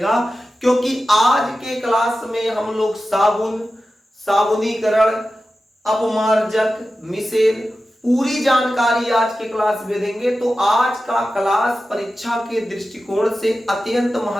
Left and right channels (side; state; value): both; normal; correlation 0.93